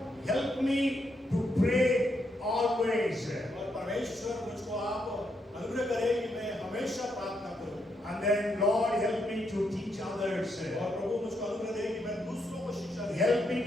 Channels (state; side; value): normal; both; correlation 0.79